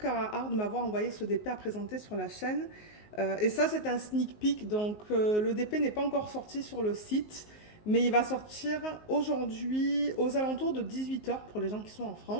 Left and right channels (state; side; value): late; right; 19 ms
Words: Art de m'avoir envoyé ce DP à présenter sur la chaîne. Et ça c'est un sneak peek, donc le DP n'est pas encore sorti sur le site, mais il va sortir aujourd'hui aux alentours de 18 h pour les gens qui sont en